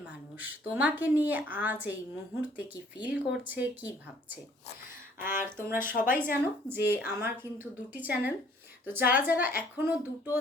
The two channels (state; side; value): normal; both; correlation 0.59